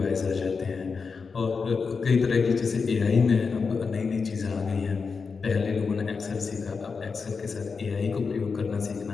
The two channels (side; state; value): right; quieter; 5.1 dB